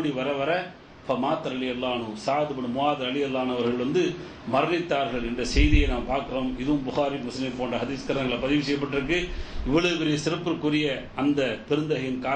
வர வர ஃபமாத்த ரலியல்லாஹு அன்ஹு, சஅத் இப்னு முஆத் ரலியல்லாஹு அன்ஹு அவர்கள் வந்து மரணித்தார்கள் என்ற செய்தியை நாம் பார்க்கிறோம். இதுவும் புகாரி முஸ்லிம் போன்ற ஹதீஸ் கிரந்தங்களை பதிவு செய்யப்பட்டிருக்கு. இவ்வளவு பெரிய சிறப்பிற்குரிய அந்த பெருந்தகையின்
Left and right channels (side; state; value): both; identical; correlation 1.00